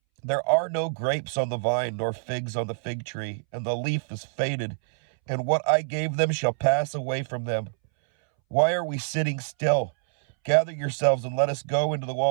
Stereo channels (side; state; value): left; silent; 61 dB below the other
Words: There are no grapes on the vine, nor figs on the fig tree, and the leaf is faded, and what I gave them shall pass away from them. Why are we sitting still? Gather yourselves and let us go into the